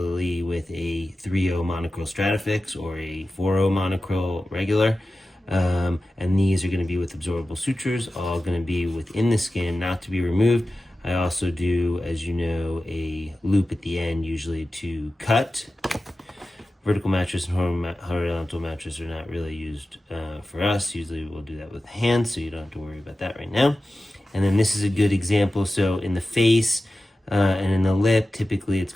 with a 3/0 monocryl Stratafix or a 4/0 monocryl regular. And these are going to be with absorbable sutures, all going to be within the skin, not to be removed. I also do, as you know, a loop at the end, usually to cut. Vertical mattress and horizontal mattress are not really used for us. Usually we'll do that with hands, so you don't have to worry about that right now. And then this is a good example. So in the face and in the lip, typically it's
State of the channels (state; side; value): normal; both; correlation 0.94